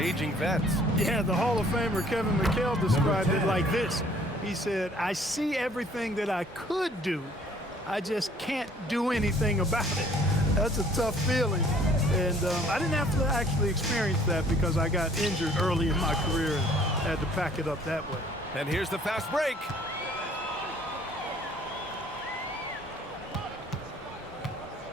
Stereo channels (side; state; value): both; normal; correlation 0.57